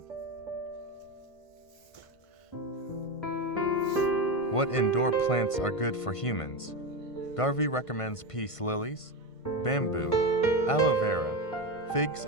What indoor plants are good for humans? Garvey recommends peace lilies, bamboo, aloe vera, figs,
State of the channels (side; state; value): right; late; 1.5 ms